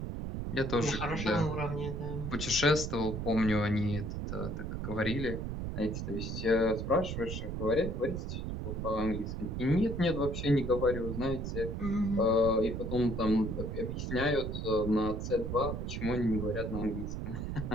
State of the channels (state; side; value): noise; right; rumble, 4 dB below the sound